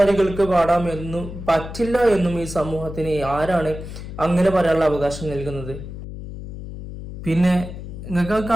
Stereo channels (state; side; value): noise; left; hum, 10 dB below the sound